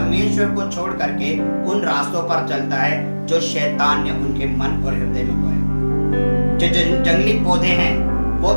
को छोड़ करके उन रास्तों पर चलता है जो शैतान ने उनके मन और हृदय में बोए। जो जंगली पौधे हैं वो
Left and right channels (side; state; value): both; inverted; correlation -1.00